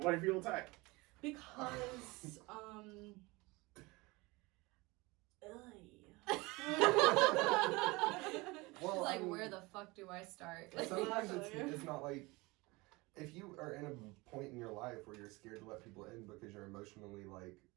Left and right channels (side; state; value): left; quieter; 23.6 dB